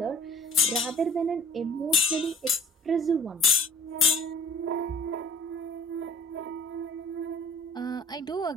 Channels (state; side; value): normal; both; correlation 0.48